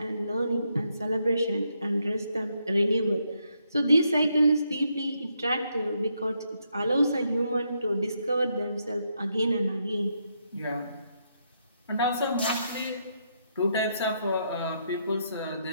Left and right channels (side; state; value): both; inverted; correlation -0.78